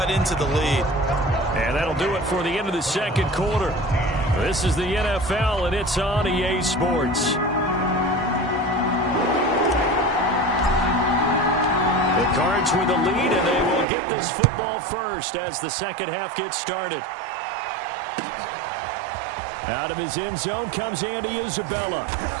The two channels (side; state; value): left; drops out; at 13.9 s